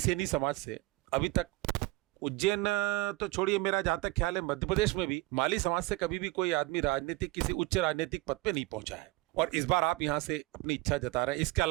समाज से अभी तक उज्जैन तो छोड़िए, मेरा जहां तक ख्याल है मध्य प्रदेश में भी माली समाज से कभी भी कोई आदमी राजनीतिक किसी उच्च राजनीतिक पद पे नहीं पहुंचा है। और इस बार आप यहां से अपनी इच्छा जता रहे हैं। इसके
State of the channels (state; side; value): quieter; left; 20.7 dB